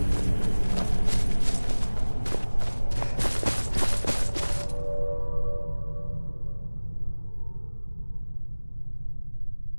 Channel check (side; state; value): both; inverted; correlation -1.00